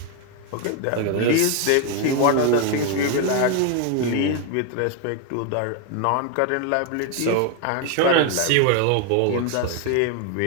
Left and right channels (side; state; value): both; different; correlation 0.01